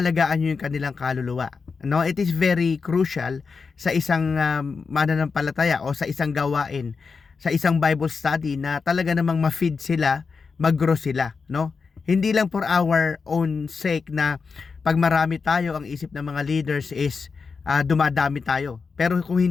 nyo yung kanilang kaluluwa. No, it is very crucial sa isang mananampalataya o sa isang gawain, sa isang Bible study na talaga namang ma-feed sila, mag-grow sila, no? Hindi lang for our own sake na pag marami tayo, ang isip ng mga leaders is dumadami tayo. Pero kung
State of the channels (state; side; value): quieter; right; 5.1 dB